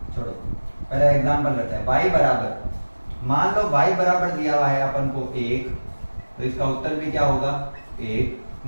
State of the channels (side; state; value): both; inverted; correlation -1.00